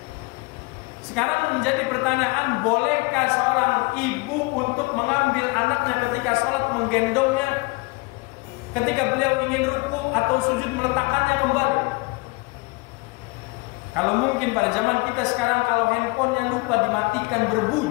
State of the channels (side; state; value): right; quieter; 26.9 dB